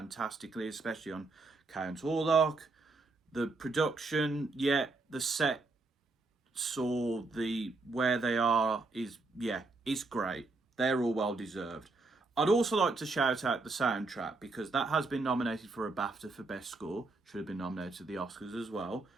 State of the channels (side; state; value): left; quieter; 3.5 dB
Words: especially on Count Orlok. The production, yeah, the set saw where they are is, yeah, it's great. They're all well deserved. I'd also like to shout out the soundtrack, because that has been nominated for a BAFTA for Best Score. Should have been nominated at the Oscars as well.